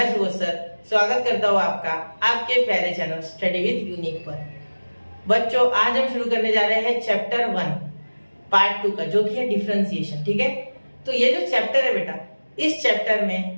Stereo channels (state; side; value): inverted; both; correlation -1.00